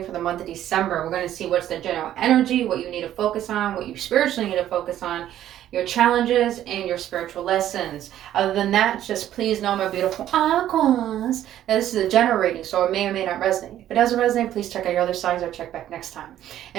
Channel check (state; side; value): quieter; left; 12.0 dB